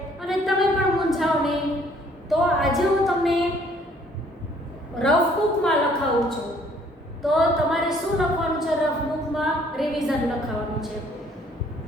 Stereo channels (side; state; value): both; normal; correlation 0.61